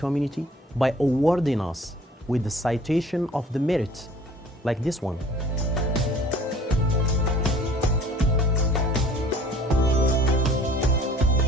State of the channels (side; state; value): both; normal; correlation 0.50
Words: by awarding us with the citation of the merit, like this one.